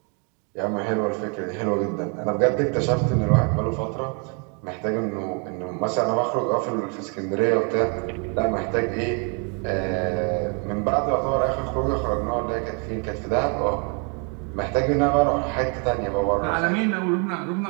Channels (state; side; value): quieter; left; 37.0 dB